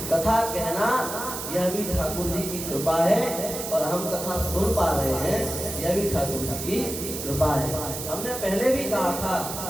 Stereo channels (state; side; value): noise; right; hiss, 7 dB below the sound